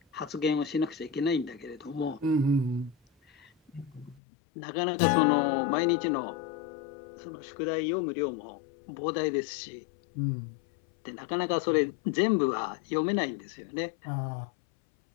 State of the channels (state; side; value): drops out; right; at 4.2 s